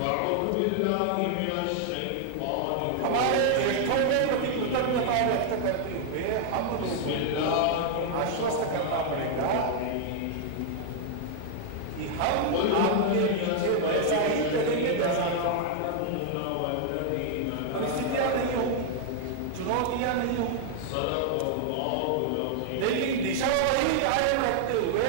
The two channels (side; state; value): both; different; correlation 0.00